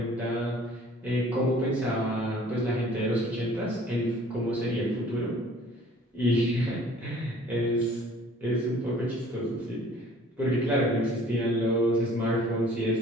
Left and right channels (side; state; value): both; normal; correlation 0.52